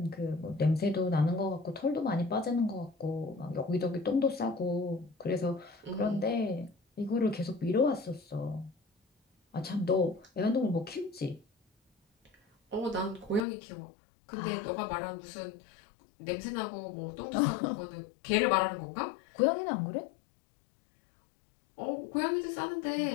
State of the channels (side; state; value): right; drops out; at 13.5 s